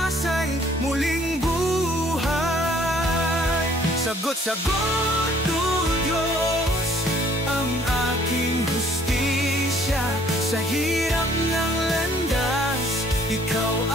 muling buhay. Sagot-sagot, o Diyos, ang aking hustisya. Sa hirap ng landas, ikaw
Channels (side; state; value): both; normal; correlation 0.59